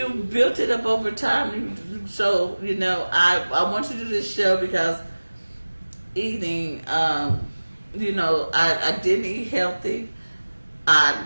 built it up over time. So I want to do this show because eating, I didn't eat healthy.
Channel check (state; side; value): inverted; both; correlation -1.00